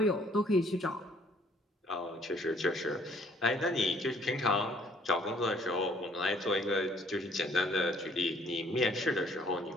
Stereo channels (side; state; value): both; normal; correlation 0.61